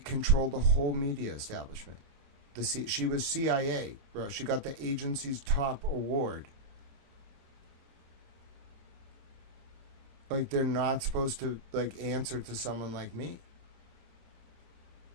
the whole media establishment. She was CIA, bro. She got the agency's top award. Like, they're not supposed to, like, answer to someone like me.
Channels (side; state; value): left; late; 29 ms